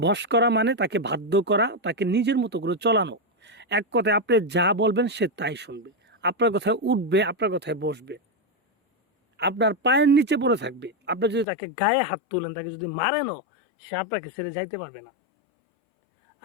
বশ করা মানে তাকে বাধ্য করা, তাকে নিজের মতো করে চলানো। এক কথায় আপনি যা বলবেন সে তাই শুনবে, আপনার কথায় উঠবে, আপনার কথায় বসবে, আপনার পায়ের নিচে পড়ে থাকবে। আপনি যদি তাকে গায়ে হাত তুলেন, তাকে যদি মারেনও, সে আপনাকে ছেড়ে যাইতে পারবে না।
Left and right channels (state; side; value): drops out; right; at 11.5 s